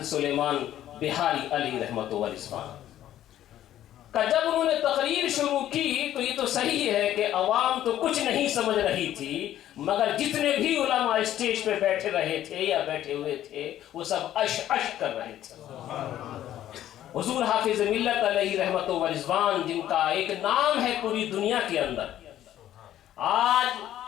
سلیمان بہاری علیہ رحمۃ و رضوان. جب انہوں نے تقریر شروع کی تو یہ تو صحیح ہے کہ عوام تو کچھ نہیں سمجھ رہی تھی، مگر جتنے بھی علماء اسٹیج پہ بیٹھے رہے تھے یا بیٹھے ہوئے تھے وہ سب اش کر رہے تھے. حضور حافظ ملت علیہ رحمۃ و رضوان جن کا ایک نام ہے پوری دنیا کے اندر، آج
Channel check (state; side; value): quieter; right; 12.3 dB